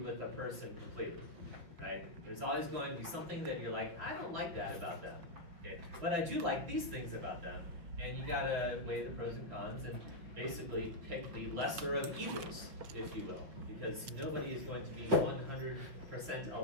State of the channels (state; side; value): late; left; 6.0 ms